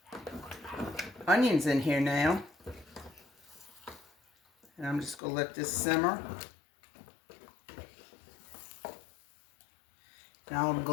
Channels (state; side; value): drops out; right; at 5.2 s